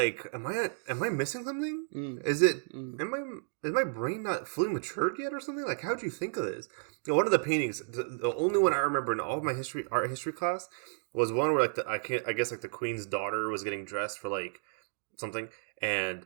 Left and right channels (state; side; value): silent; left; digital silence